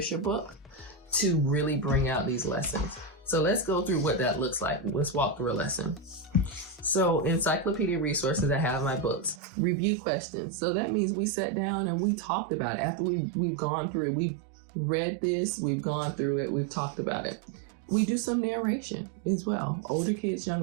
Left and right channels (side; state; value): left; drops out; at 9.4 s